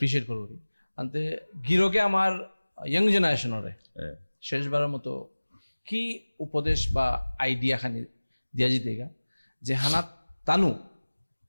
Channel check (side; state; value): both; inverted; correlation -1.00